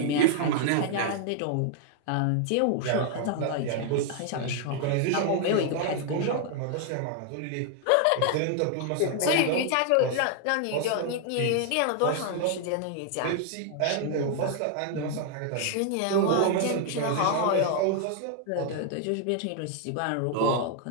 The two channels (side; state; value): both; different; correlation 0.00